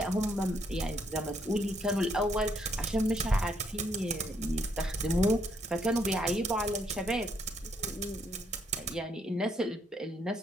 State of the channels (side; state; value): both; normal; correlation 0.72